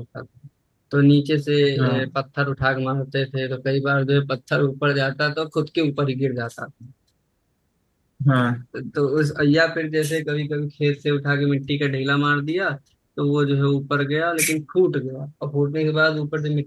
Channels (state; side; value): identical; both; correlation 1.00